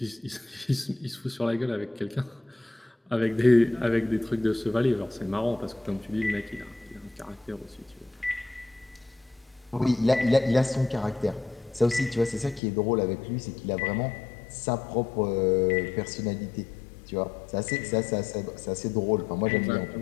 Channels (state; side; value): drops out; right; at 12.6 s